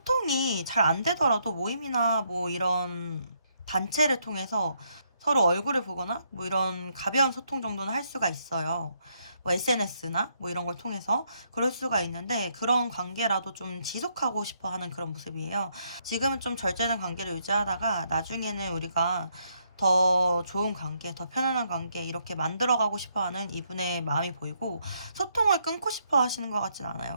잘 안 되더라도 모임이나 뭐 이런 단체를 통해서 서로 얼굴을 보거나 뭐 이런 가벼운 소통 정도는 할 수가 있어요. 뭐 SNS나 뭐 이런 걸 통해서 그럴 수가 있는데, 그런 관계라도 좀 지속하고 싶어 하는 그런 모습이에요. 지금은 좀 절제된 관계를 유지하다가 나중에는 우리가 더 좋은 관계, 더 편안한 관계 이렇게 만들어가고 싶어하는 이분의 마음이 보이고, 소통을 끊고 싶어 하시는 것 같진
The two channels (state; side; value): inverted; both; correlation -0.74